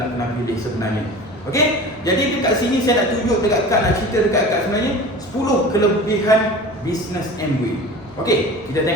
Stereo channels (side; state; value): both; normal; correlation 0.37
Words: kena pilih sebenarnya. Okey, jadi dekat sini saya nak tunjuk dekat kad, nak cerita dekat kad sebenarnya 10 kelebihan bisnes Amway. Okey, kita